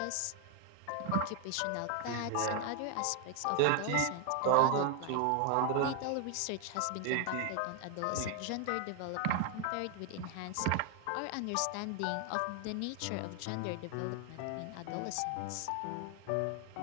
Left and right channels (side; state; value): both; different; correlation 0.01